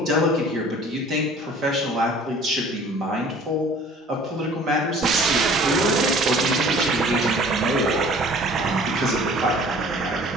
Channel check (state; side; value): normal; both; correlation 0.49